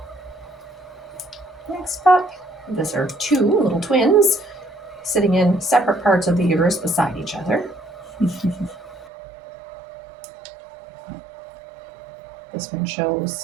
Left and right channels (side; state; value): left; drops out; at 9.1 s